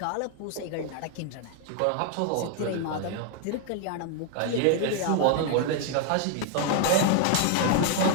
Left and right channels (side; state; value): both; different; correlation 0.00